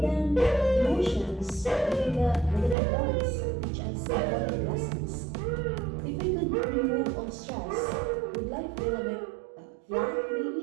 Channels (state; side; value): drops out; left; at 2.8 s